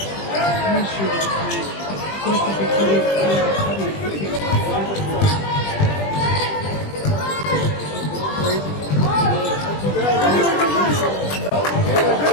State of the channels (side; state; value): right; late; 20 ms